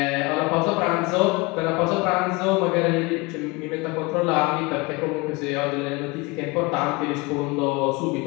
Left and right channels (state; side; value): quieter; right; 25.3 dB